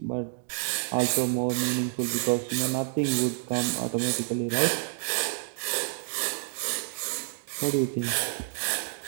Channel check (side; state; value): left; silent; digital silence